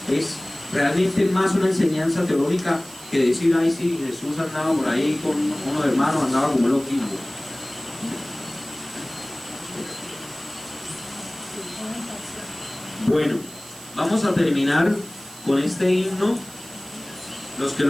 Es realmente más una enseñanza teológica que decir, ay sí, Jesús andaba por ahí con unos hermanos, andaba como loquillo. Bueno, vamos a terminar con este himno. Los que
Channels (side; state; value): right; noise; hiss, 18 dB below the sound